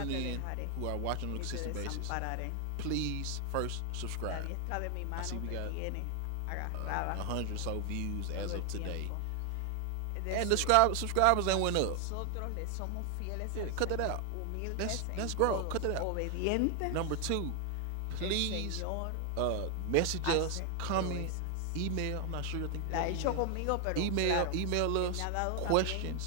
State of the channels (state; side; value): different; both; correlation 0.00